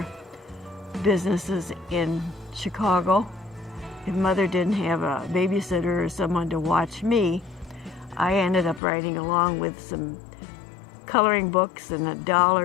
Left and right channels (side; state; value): right; drops out; at 8.8 s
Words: businesses in Chicago. If Mother didn't have a babysitter or someone to watch me, I ended up riding along with some coloring books and a doll